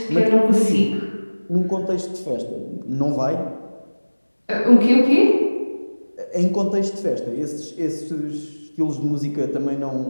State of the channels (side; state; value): both; inverted; correlation -1.00